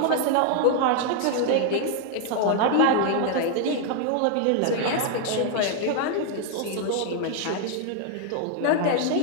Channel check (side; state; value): both; different; correlation 0.00